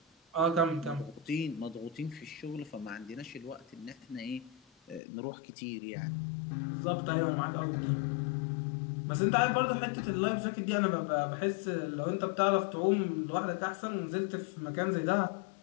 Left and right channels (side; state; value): right; drops out; at 5.0 s